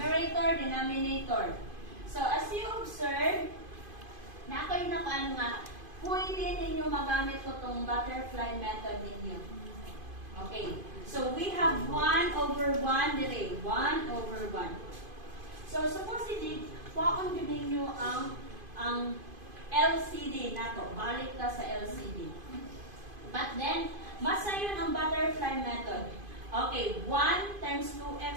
denominator. So, as you observe, na ako'y nakaan nga, pwede ninyo magamit ko itong butterfly method ninyo. Okay. So, we have 1 over 1 dire. 1 over 1. So, supposedly, kuhaan din ninyo ang LCD na to. Balik ka sa LCD. But then, masa yun ang butterfly method. Okay, 1 times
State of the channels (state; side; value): late; left; 2.5 ms